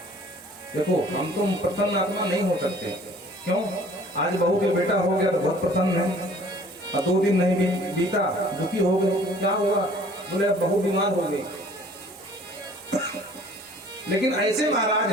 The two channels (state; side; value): normal; both; correlation 0.53